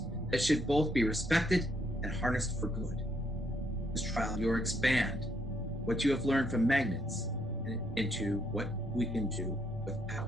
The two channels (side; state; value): both; normal; correlation 0.73